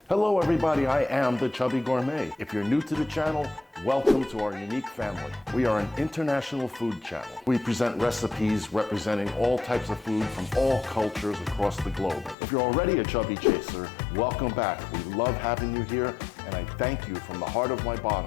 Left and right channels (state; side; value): drops out; right; at 12.4 s